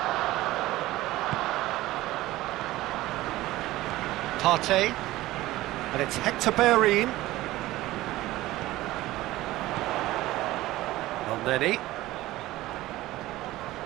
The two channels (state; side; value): quieter; left; 17.1 dB